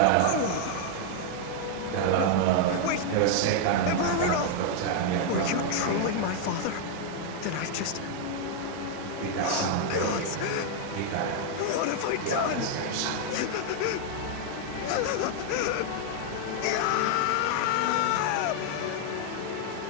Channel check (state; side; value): different; both; correlation 0.00